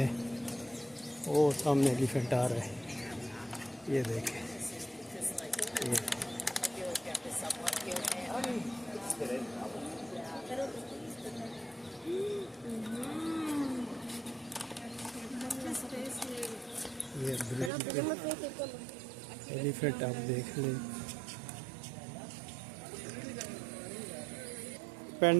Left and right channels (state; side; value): drops out; left; at 17.7 s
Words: हैं। वो सामने एलिफेंट आ रहा है, ये देखें। ये एलिफेंट आप देख लें।